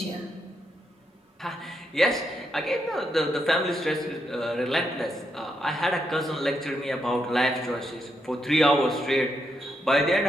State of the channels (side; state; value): both; normal; correlation 0.81